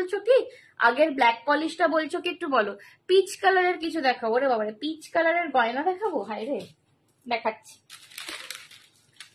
কি? আগের ব্ল্যাক পলিশটা বলছো কি একটু বলো। পিচ কালারের কিছু দেখাবো রে বাবারে, পিচ কালারের গয়না দেখাবো? হায় রে, দেখাচ্ছি,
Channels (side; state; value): both; identical; correlation 1.00